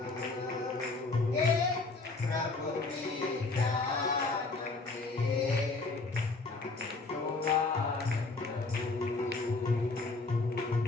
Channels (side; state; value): right; quieter; 3.6 dB